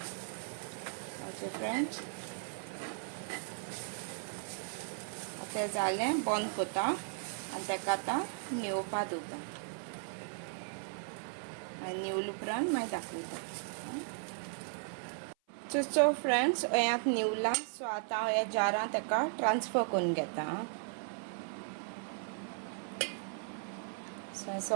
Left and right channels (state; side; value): silent; left; 53 dB below the other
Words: ओके फ्रेंड्स, तें जालें बंद कोता आनी ताका आतां निवोवपा दोता. निवले उपरांत मागीर दाखयता. सो फ्रेंड्स हें निवला. सो आतां हांव ह्या जारांत ताका ट्रान्सफर करून घेता. सो